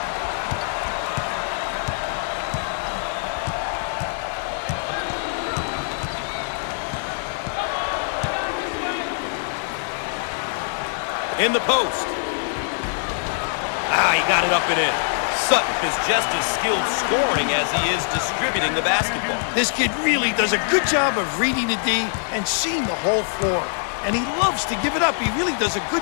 In the post. He got it up and in. Sutton is just as skilled scoring as he is distributing the basketball. This kid really does a good job of reading the D and seeing the whole floor. And he loves to give it up. He really does a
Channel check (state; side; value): silent; right; digital silence